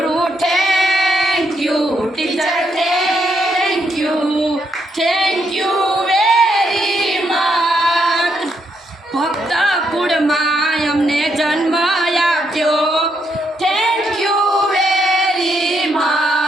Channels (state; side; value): normal; both; correlation 0.77